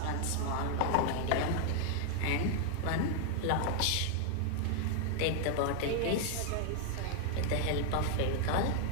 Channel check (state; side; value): different; both; correlation 0.00